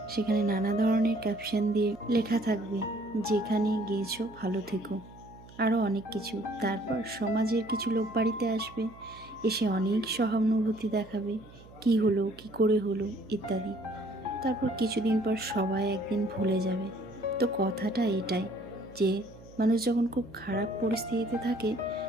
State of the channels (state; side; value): noise; right; hum, 21 dB below the sound